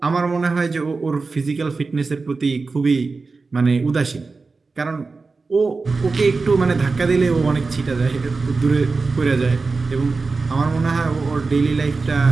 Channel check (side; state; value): left; quieter; 4.1 dB